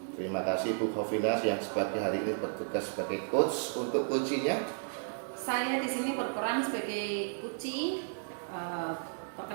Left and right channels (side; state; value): left; silent; digital silence